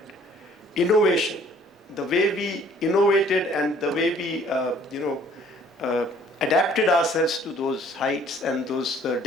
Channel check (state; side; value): normal; both; correlation 0.57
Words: innovation. The way we innovated and the way we, adapted ourselves to those heights and those